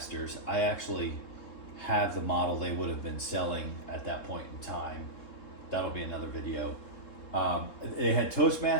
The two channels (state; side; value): late; right; 3.7 ms